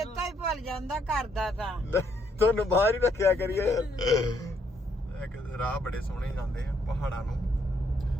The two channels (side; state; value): both; normal; correlation 0.72